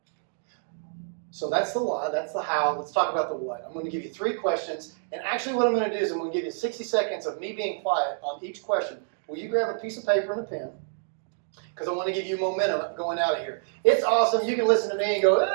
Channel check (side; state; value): left; silent; digital silence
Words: So that's the why, that's the how. Let's talk about the what. I'm going to give you 3 questions, and actually what I'm going to do is I'm going to give you 60 seconds of me being quiet on each question. Will you grab a piece of paper and a pen? Because I want to give you momentum going out of here. It's awesome. You can listen to me and go,